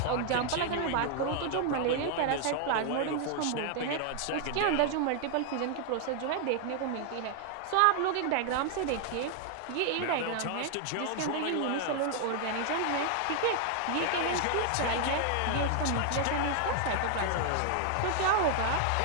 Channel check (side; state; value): both; different; correlation 0.00